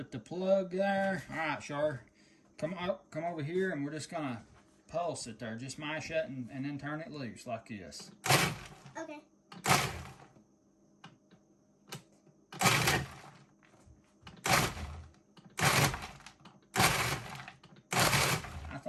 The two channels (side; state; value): both; identical; correlation 1.00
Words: the plug there. All right, Char, come over here, and we're just gonna pulse it there. Just mash it and then turn it loose like this. Okay. I